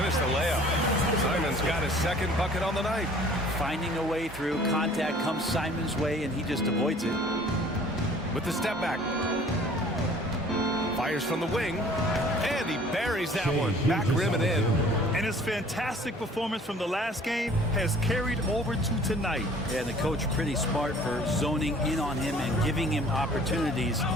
the layup. Simons got his second bucket on the night. Finding a way through. Contact comes Simons' way, and he just avoids it. With the step back. Fires from the wing. And he buries that one. Back rim and in. And his fantastic performance from the last game has carried over to tonight. Yeah, the coach pretty smart for zoning in on him and giving him opportunities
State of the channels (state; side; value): normal; both; correlation 0.52